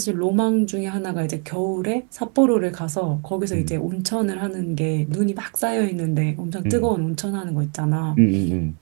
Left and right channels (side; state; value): left; quieter; 36.3 dB